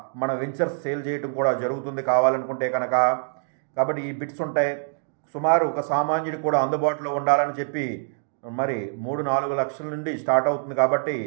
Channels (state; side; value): silent; left; digital silence